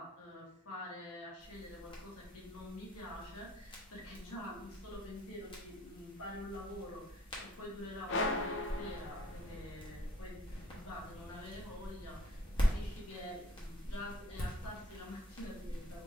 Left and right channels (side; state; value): both; normal; correlation 0.56